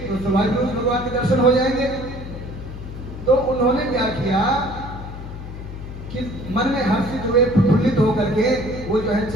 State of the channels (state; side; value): noise; left; hum, 11 dB below the sound